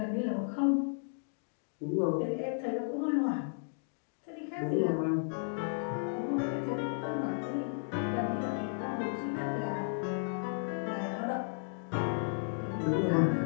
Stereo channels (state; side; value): silent; right; digital silence